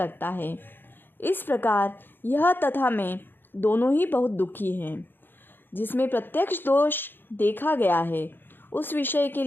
है। इस प्रकार यह तथा मैं दोनों ही बहुत दुखी हैं। जिसमें प्रत्यक्ष दोष देखा गया है, उस विषय के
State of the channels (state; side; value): late; right; 0.098 ms